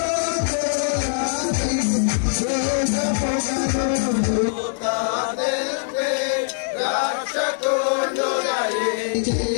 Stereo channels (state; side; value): silent; right; digital silence